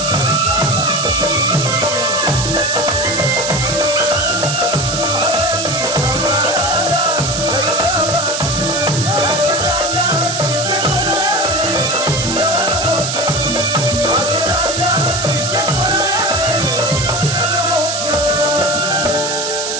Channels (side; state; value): right; noise; hiss, 3 dB below the sound